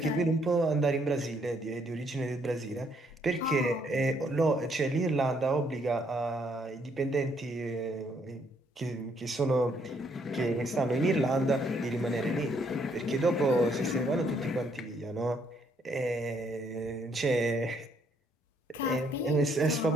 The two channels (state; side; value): normal; both; correlation 0.70